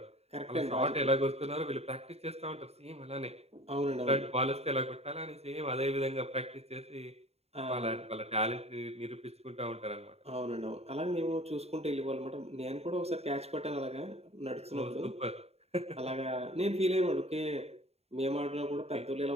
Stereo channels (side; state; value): left; late; 0.30 ms